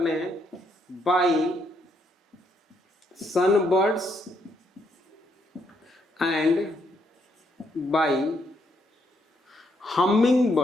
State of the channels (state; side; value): normal; both; correlation 0.74